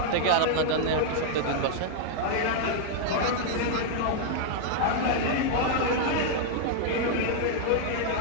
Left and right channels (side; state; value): both; different; correlation -0.01